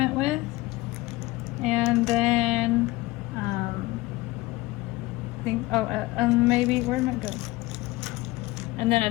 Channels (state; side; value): quieter; right; 20.2 dB